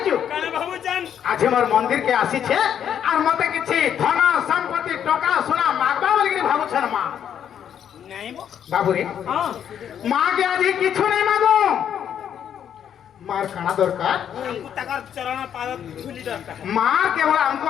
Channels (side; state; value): right; quieter; 9.1 dB